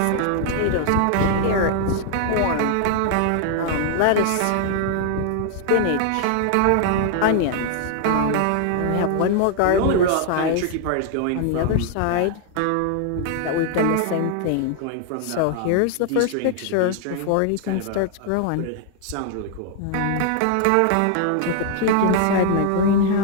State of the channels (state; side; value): different; both; correlation 0.00